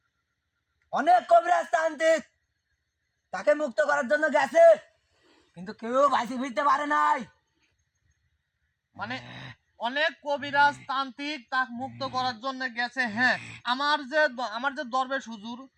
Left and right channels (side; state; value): both; identical; correlation 1.00